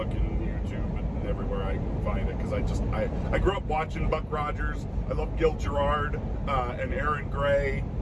and YouTube and everywhere I can find it, because I grew up watching Buck Rogers. I love Gil Gerard and Aaron Gray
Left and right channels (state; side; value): identical; both; correlation 1.00